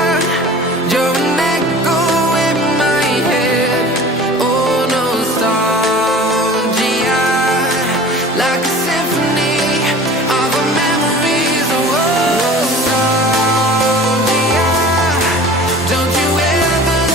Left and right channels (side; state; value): both; normal; correlation 0.42